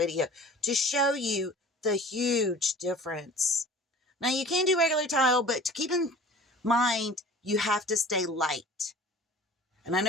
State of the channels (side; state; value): both; normal; correlation 0.44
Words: to show you the huge difference. Now, you can do regular tile, but to keep in mind, you have to stay light. And I